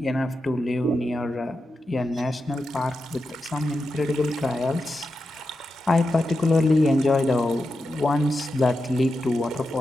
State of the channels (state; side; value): normal; both; correlation 0.89